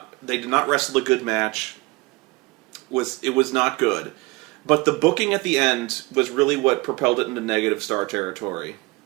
wrestle a good match. It was not good. But the booking at the end was really what propelled it into negative star territory.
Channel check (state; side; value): quieter; left; 23.8 dB